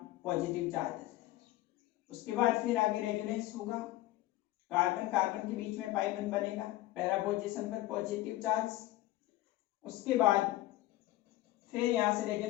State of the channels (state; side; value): quieter; right; 16.7 dB